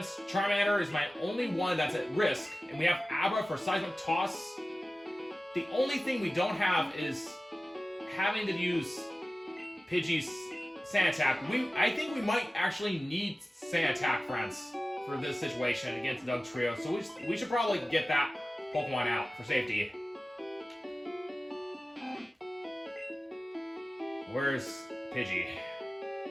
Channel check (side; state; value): both; normal; correlation 0.97